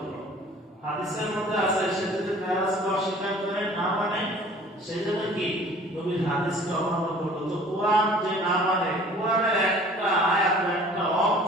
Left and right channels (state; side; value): normal; both; correlation 0.49